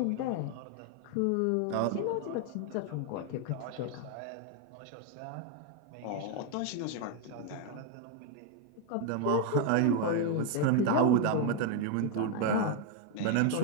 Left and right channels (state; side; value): different; both; correlation 0.01